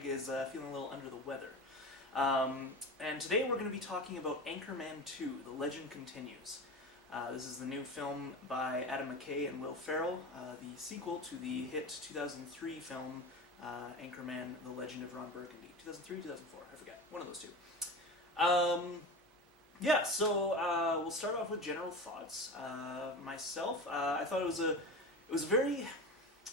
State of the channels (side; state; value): both; normal; correlation 0.28